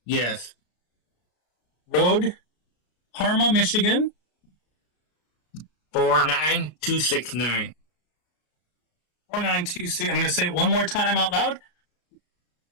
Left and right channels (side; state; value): right; late; 33 ms